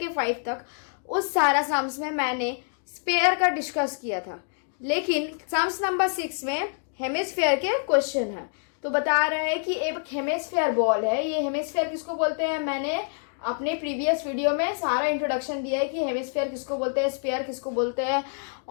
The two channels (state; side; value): silent; right; 61 dB below the other